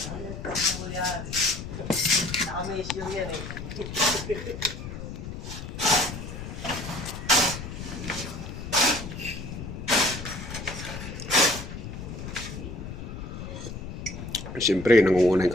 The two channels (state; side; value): noise; left; rumble, 8 dB below the sound